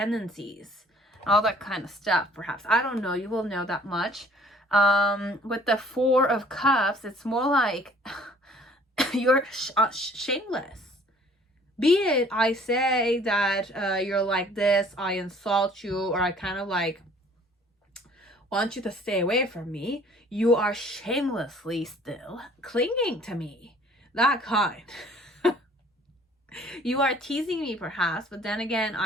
all that kind of stuff. Perhaps, I don't know, you will know that much. With the Four of Cups, it's more like you're shameless. Be it I say that you're like this, I insult you, or I kind of like want you to stay away from me, you are shamelessly still clinging to me. That kind. You are teasing me perhaps, but then again,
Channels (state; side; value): normal; both; correlation 0.55